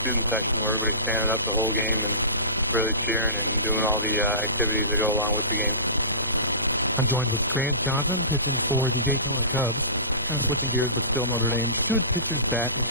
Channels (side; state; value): both; inverted; correlation -0.33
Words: student section where everybody's standing up the whole game and really cheering and doing all the activities that go along with the game. I'm joined with Grant Johnson, pitching for the Daytona Cubs. Kind of switching gears, but still Notre Dame. Should pitchers bat in